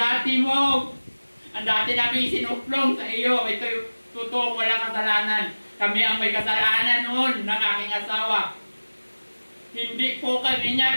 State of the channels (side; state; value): both; inverted; correlation -1.00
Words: namin sinuplong sa iyo. Ito yung totoo, walang kasalanan. Kami ang may kasalanan noon ng aking asawa. Hindi po kami